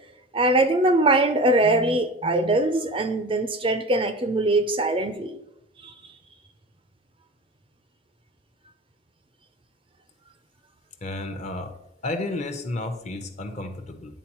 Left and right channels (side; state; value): both; normal; correlation 0.33